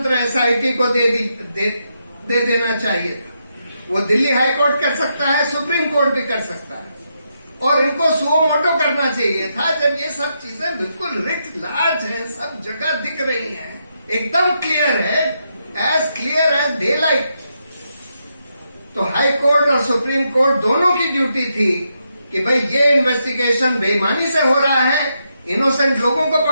एसआईटी को दे देना चाहिए था। वो दिल्ली हाई कोर्ट कर सकता है, सुप्रीम कोर्ट भी कर सकता है, और इनको सुओ मोटो करना चाहिए था जब ये सब चीजें बिल्कुल रिट लार्ज हैं, सब जगह दिख रही हैं, एकदम क्लियर है, as clear as daylight. तो हाई कोर्ट और सुप्रीम कोर्ट दोनों की ड्यूटी थी कि भाई ये इन्वेस्टिगेशन बेईमानी से हो रहा है, इनोसेंट लोगों को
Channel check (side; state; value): both; inverted; correlation -0.82